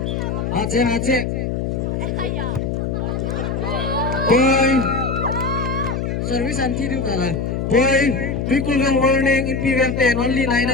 Aceh. Point, service anti itu kalah. Point, equivalent warning, impedance 10, only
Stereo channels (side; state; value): left; noise; hum, 1 dB below the sound